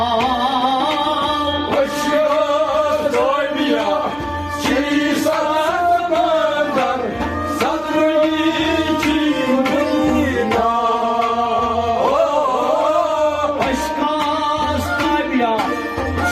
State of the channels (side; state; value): right; noise; hum, 23 dB below the sound